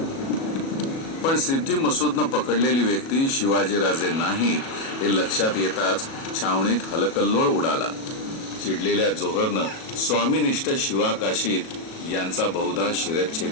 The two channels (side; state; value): right; late; 37 ms